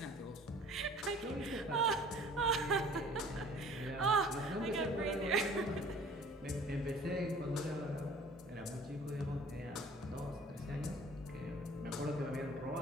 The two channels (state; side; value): normal; both; correlation 0.49